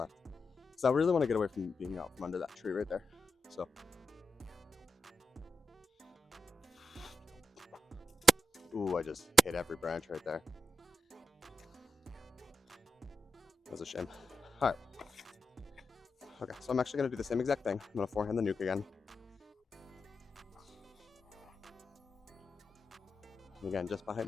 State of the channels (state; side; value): normal; both; correlation 0.87